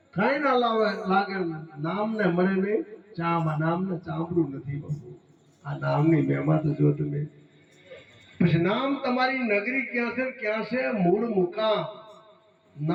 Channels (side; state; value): both; identical; correlation 1.00